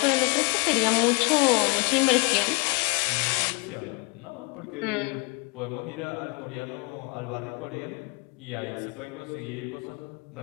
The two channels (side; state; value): right; quieter; 30.2 dB